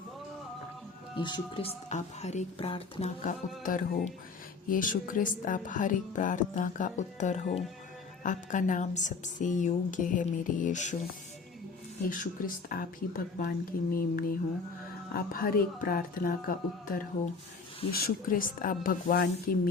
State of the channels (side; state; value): right; quieter; 4.6 dB